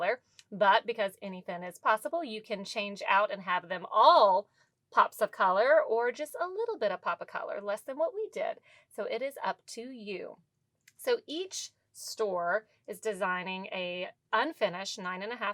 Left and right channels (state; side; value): identical; both; correlation 1.00